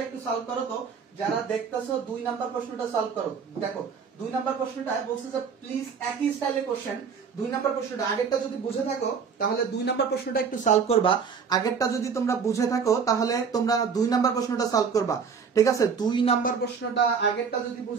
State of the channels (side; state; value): left; quieter; 6.1 dB